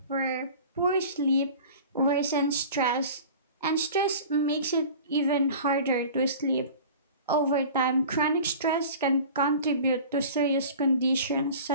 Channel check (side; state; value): both; inverted; correlation -0.41